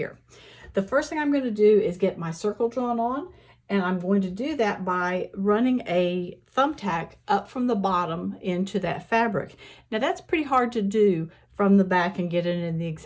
The first thing I'm going to do is get my circle drawn on, and I'm going to do that by running a thumbtack up from the bottom into that fabric. Now that's pretty hard to do from the back and get it in the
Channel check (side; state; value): both; identical; correlation 1.00